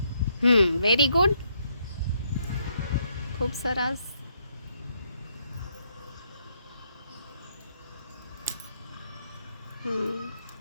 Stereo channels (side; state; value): both; inverted; correlation -0.74